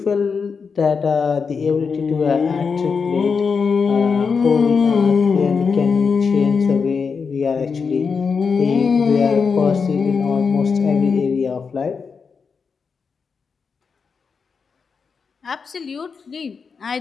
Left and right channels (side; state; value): right; quieter; 5.5 dB